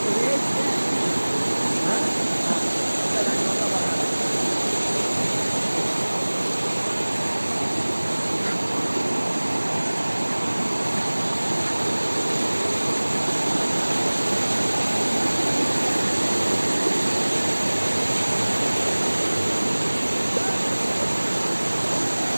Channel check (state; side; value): inverted; both; correlation -1.00